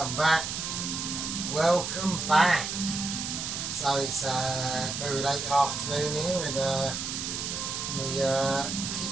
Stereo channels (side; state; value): right; noise; hiss, 4 dB below the sound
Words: back. Welcome back. So it's very late afternoon here in the